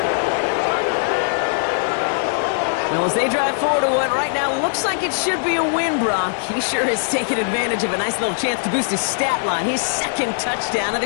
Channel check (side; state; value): right; silent; 56 dB below the other